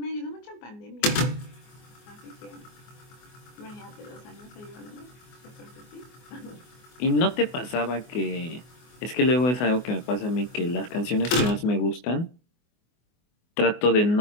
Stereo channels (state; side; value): late; right; 24 ms